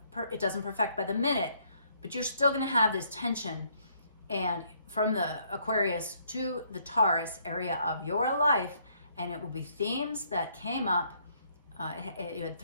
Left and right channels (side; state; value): both; inverted; correlation -0.68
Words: doesn't perfect by the minute, but you're still gonna have this tension. And from the Aquarius to the Taurus area of your life, and it will be themes that came up. You had